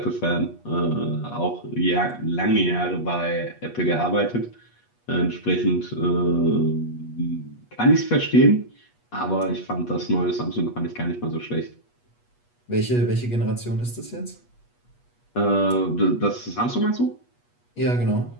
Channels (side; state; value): right; late; 8.3 ms